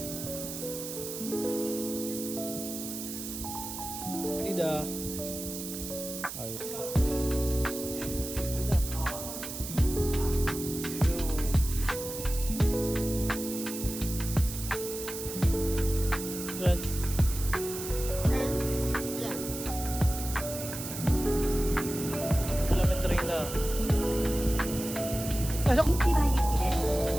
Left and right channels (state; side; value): noise; right; hiss, 8 dB below the sound